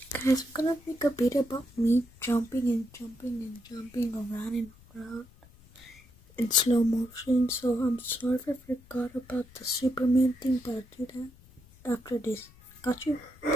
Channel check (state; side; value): noise; left; rumble, 25 dB below the sound